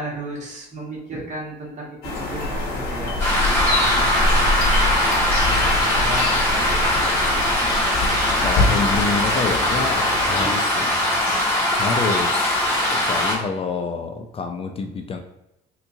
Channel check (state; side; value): normal; both; correlation 0.25